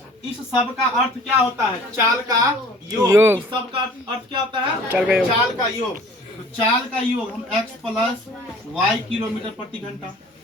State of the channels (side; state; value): both; normal; correlation 0.49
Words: इस सब का अर्थ क्या होता है? चाल का योग। इस सब का अर्थ क्या होता है? चाल का योग। तो चाल का योग हम x प्लस वाई किलोमीटर प्रति घंटा,